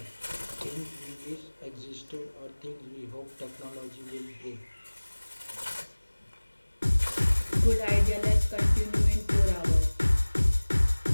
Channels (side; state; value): both; inverted; correlation -1.00